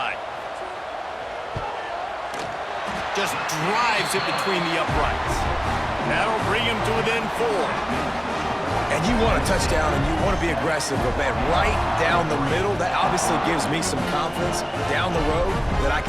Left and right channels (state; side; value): identical; both; correlation 1.00